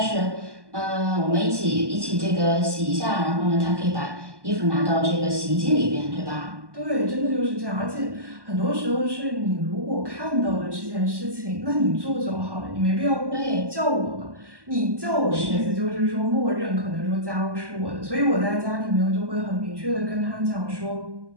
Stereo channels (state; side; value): late; left; 1.1 ms